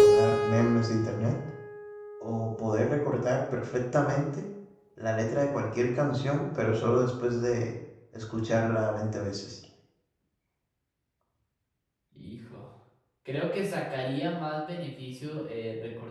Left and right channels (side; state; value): both; identical; correlation 1.00